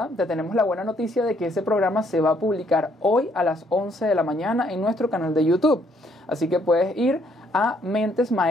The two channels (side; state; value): both; normal; correlation 0.68